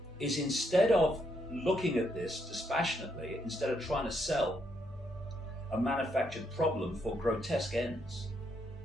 is, instead of looking at this dispassionately, instead of trying to sell a manufactured problem for grotesque ends,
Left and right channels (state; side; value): normal; both; correlation 0.76